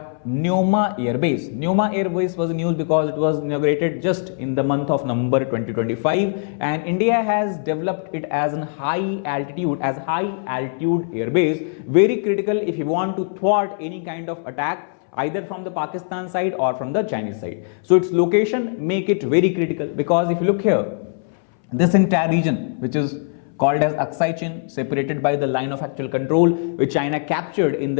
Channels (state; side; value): silent; right; 62 dB below the other